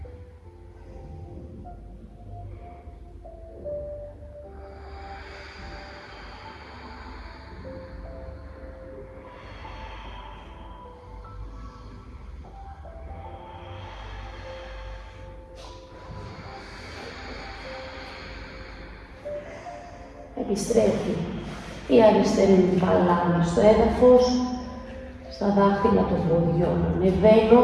Επιστρέφει η αριστερή μου παλάμη στο έδαφος, στα δάχτυλα των ποδιών ανεβαίνω,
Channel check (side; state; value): both; identical; correlation 1.00